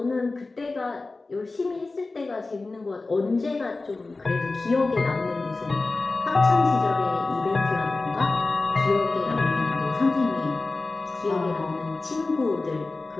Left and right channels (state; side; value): quieter; right; 3.5 dB